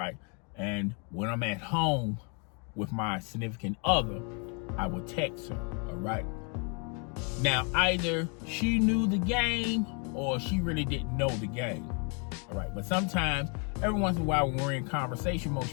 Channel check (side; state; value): right; quieter; 37.0 dB